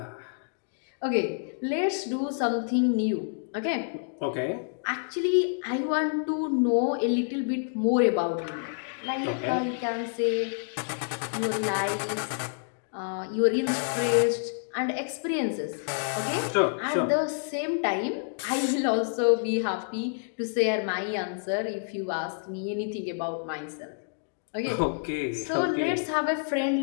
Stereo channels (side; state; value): right; silent; digital silence